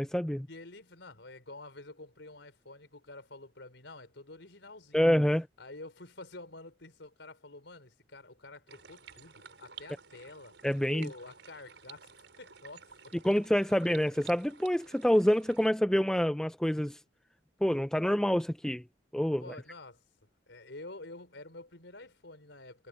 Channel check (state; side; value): normal; both; correlation 0.97